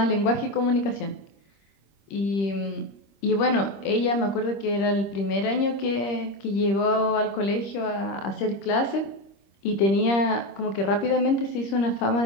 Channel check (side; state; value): right; late; 26 ms